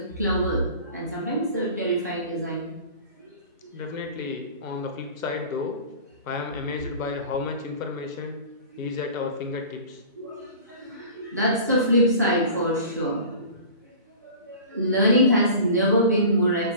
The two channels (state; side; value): inverted; both; correlation -0.40